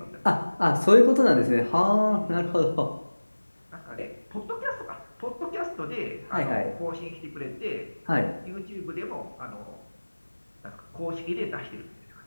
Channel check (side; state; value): both; inverted; correlation -1.00